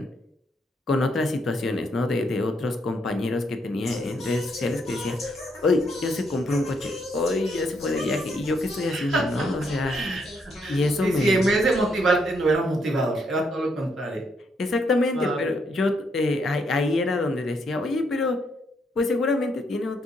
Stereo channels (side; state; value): both; normal; correlation 0.75